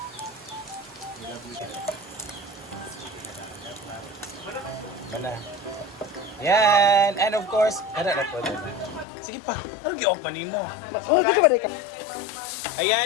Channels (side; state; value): right; drops out; at 9.1 s